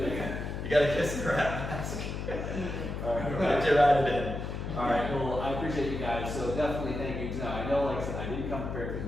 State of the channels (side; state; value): left; noise; hum, 5 dB below the sound